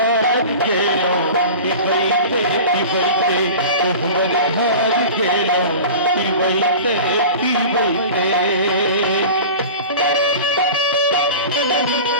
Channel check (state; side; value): inverted; both; correlation -0.35